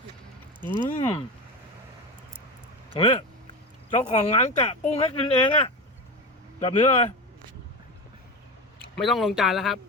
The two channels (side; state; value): both; normal; correlation 0.23